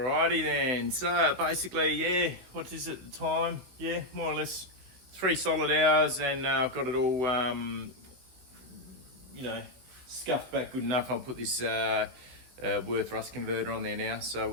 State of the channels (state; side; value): late; left; 16 ms